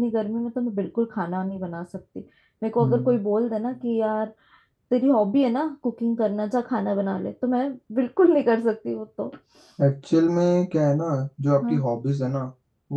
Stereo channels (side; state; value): both; identical; correlation 1.00